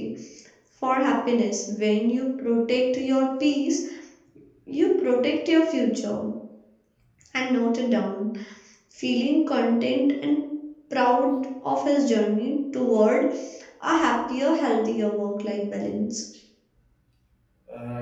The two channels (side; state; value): both; identical; correlation 1.00